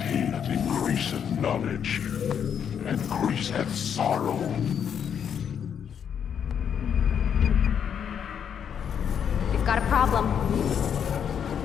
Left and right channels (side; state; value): right; quieter; 8.1 dB